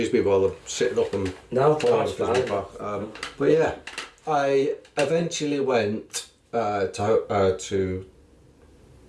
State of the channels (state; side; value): identical; both; correlation 1.00